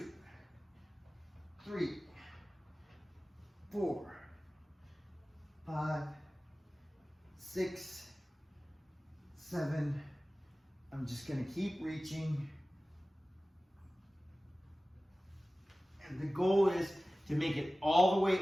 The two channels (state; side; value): normal; both; correlation 0.97